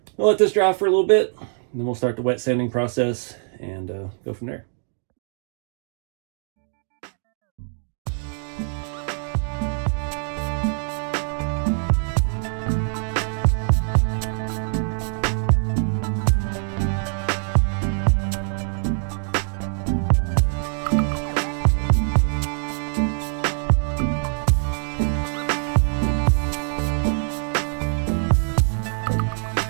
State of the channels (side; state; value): left; silent; 56 dB below the other